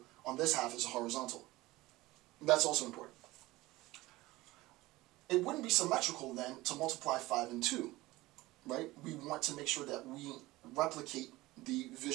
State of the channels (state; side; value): quieter; left; 19.1 dB